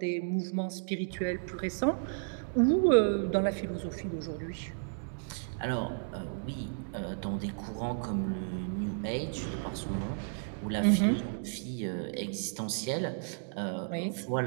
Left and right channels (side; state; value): left; silent; digital silence